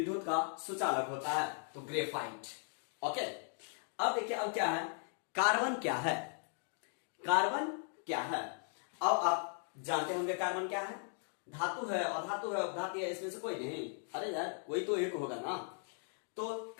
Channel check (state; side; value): silent; right; 53 dB below the other